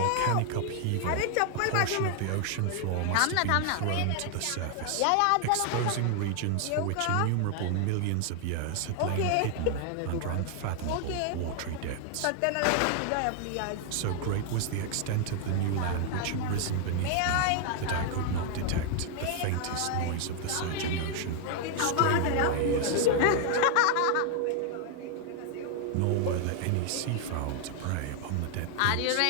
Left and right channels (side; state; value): both; different; correlation 0.00